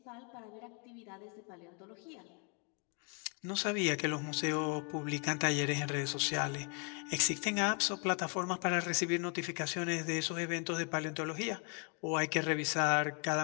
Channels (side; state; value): right; quieter; 37.5 dB